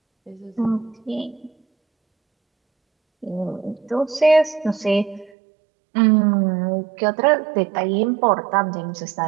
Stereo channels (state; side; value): drops out; left; at 5.3 s